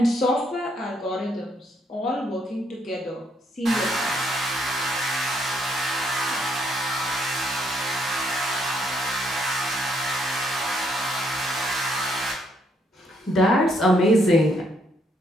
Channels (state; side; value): normal; both; correlation 0.72